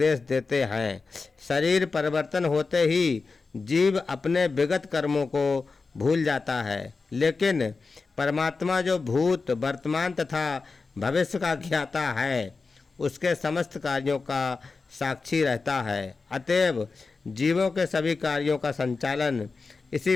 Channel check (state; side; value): quieter; right; 4.3 dB